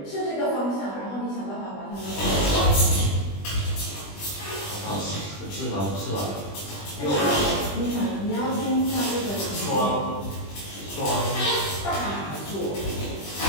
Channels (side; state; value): right; late; 20 ms